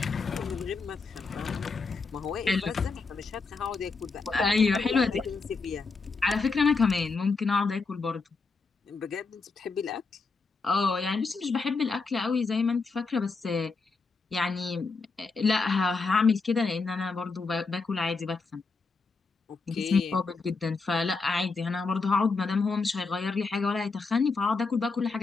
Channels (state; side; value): quieter; right; 4.2 dB